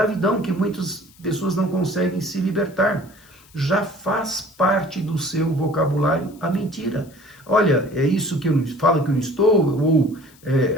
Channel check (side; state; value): left; noise; hiss, 27 dB below the sound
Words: que muitas pessoas não conseguem se libertar. Já faz parte do seu vocabulário a mentira. Olha, é isso que eu falo que eu estou, ou